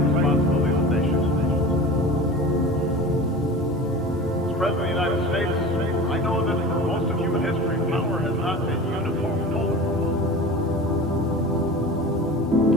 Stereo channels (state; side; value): normal; both; correlation 0.35